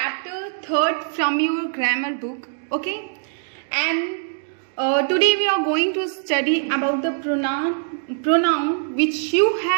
3rd from your grammar book, okay? And today we are going to study about the pronoun which you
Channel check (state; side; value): silent; left; digital silence